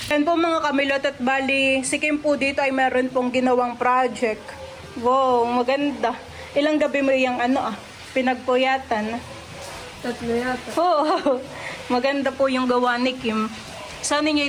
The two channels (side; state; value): both; identical; correlation 1.00